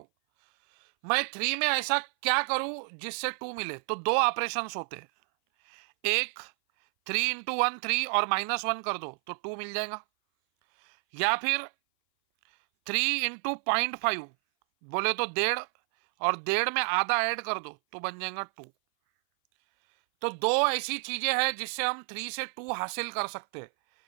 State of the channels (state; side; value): silent; left; 57 dB below the other